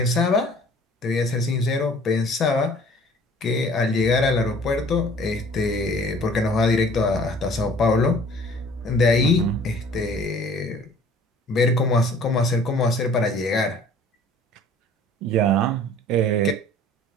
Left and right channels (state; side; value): normal; both; correlation 0.51